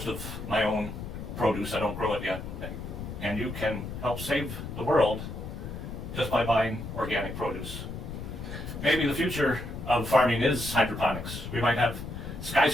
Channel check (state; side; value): noise; left; rumble, 8 dB below the sound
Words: of my own produce. I don't grow it yet. And you can help save the world just by buying organic produce. Maybe the future of farming is hydroponics. We might have